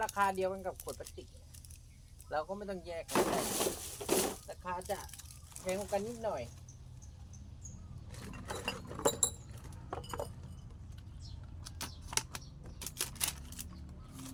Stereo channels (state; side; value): identical; both; correlation 1.00